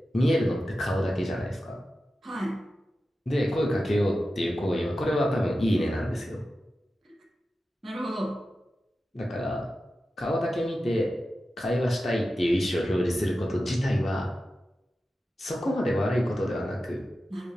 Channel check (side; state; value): both; normal; correlation 0.93